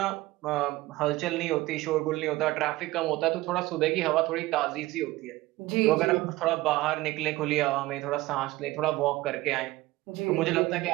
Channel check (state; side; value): quieter; left; 18.7 dB